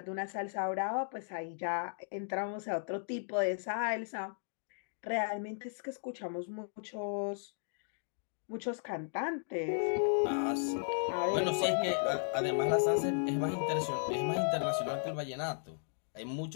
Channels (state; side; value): silent; right; digital silence